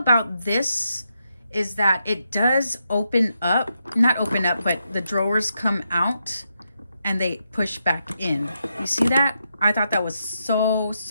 this is that it does open up, not open up, but the drawers come out and they push back in. You see that? I thought that was so,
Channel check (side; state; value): both; inverted; correlation -0.83